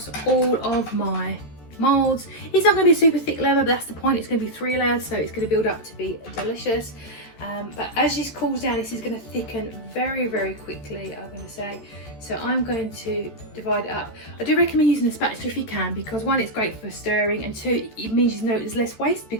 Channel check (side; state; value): right; late; 14 ms